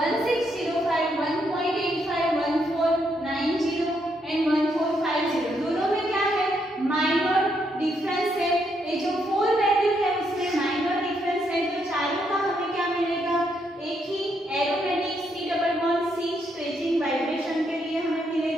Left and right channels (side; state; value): both; normal; correlation 0.76